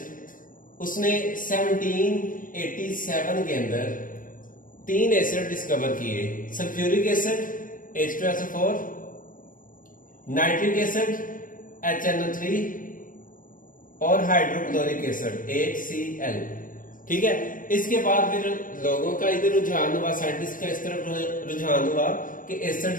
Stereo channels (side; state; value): right; late; 0.39 ms